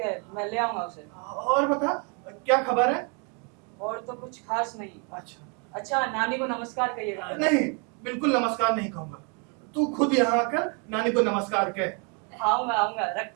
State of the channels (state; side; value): quieter; left; 36.0 dB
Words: मैं ले आऊंगा उसे। और बता क्या खबर है? और तो कुछ खास नहीं। अच्छा नानी को नमस्कार कहिएगा। नहीं, बिल्कुल नमस्कार नहीं कहूंगा, तू खुद यहाँ आकर नानी को नमस्कार कह। आऊंगा,